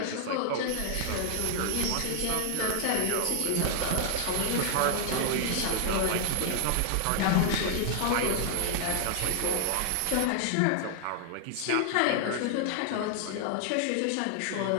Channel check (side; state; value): both; different; correlation 0.00